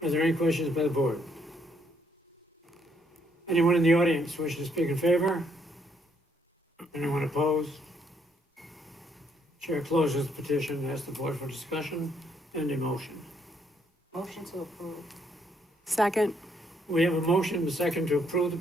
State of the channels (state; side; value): normal; both; correlation 0.71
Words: Are there any questions by the board? Anyone in the audience wishing to speak in favor? Anyone opposed? Chair closes the petition and asks the board for discussion and a motion. Motion to approve. Second. We have a motion and a second to approve the